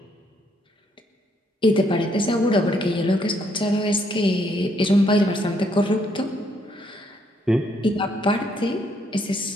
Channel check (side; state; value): both; normal; correlation 0.71